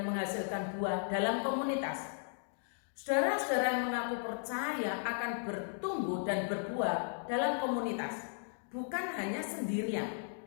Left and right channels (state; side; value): silent; right; digital silence